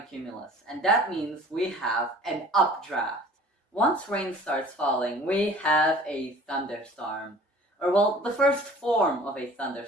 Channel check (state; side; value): normal; both; correlation 0.47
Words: cumulus, and that means we have an updraft. Once rain starts falling, we have a thunderstorm, or well, the first form of a